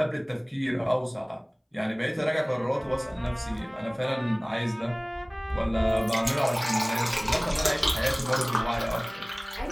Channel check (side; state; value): both; identical; correlation 1.00